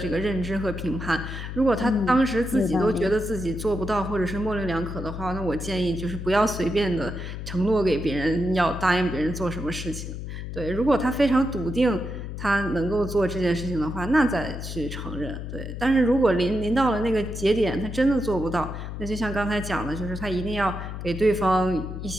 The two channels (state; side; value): noise; left; hum, 7 dB below the sound